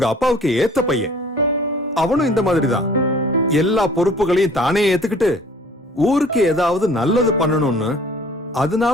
அப்பாவுக்கு ஏத்த பையன். அவனும் இந்த மாதிரி தான் எல்லா பொறுப்புகளையும் தானே ஏத்துக்கிட்டு ஊருக்கு ஏதாவது நல்லது பண்ணணும்னு,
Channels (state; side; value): normal; both; correlation 0.51